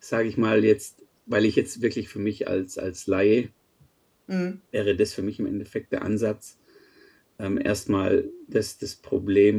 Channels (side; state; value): both; identical; correlation 1.00